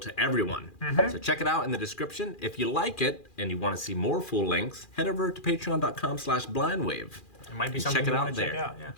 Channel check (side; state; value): right; late; 2.4 ms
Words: everyone. So check it out in the description. If you like it and you want to see more full lengths, head over to patreon.com/blindwave. It might be And something check it you out want to there. check out. Yeah.